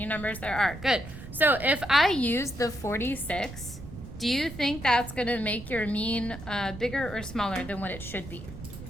there are. Good. So if I use the 46, do you think that's going to make your mean bigger or smaller than what it should be?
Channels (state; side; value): noise; right; rumble, 13 dB below the sound